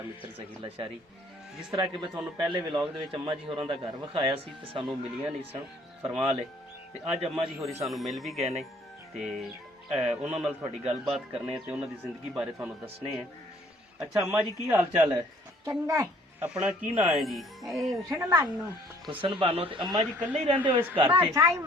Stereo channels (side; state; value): both; normal; correlation 0.59